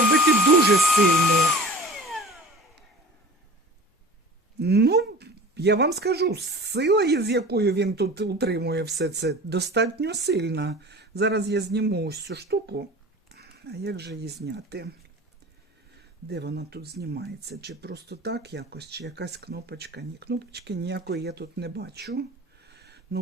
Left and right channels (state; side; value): normal; both; correlation 0.40